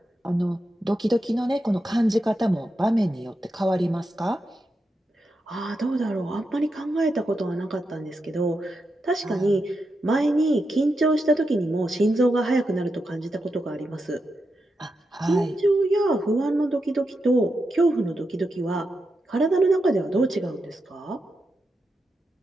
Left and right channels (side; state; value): both; normal; correlation 0.87